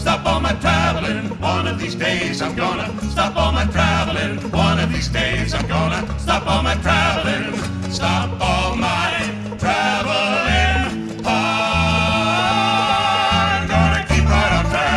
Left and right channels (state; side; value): identical; both; correlation 1.00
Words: all my traveling. One of these days I'm gonna stop all my traveling. One of these days I'm gonna stop all my traveling. Stop all my traveling on. Gonna keep right on